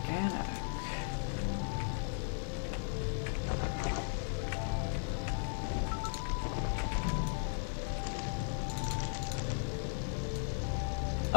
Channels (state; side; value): silent; right; digital silence